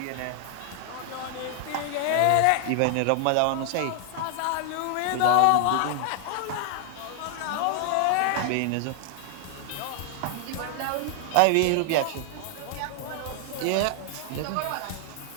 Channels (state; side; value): different; both; correlation 0.00